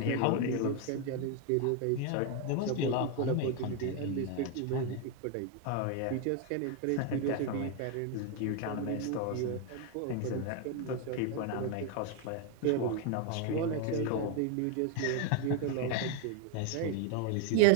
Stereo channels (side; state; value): both; different; correlation 0.01